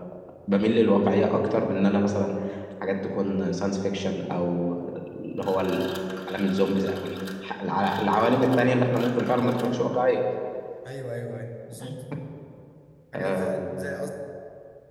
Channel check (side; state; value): both; identical; correlation 1.00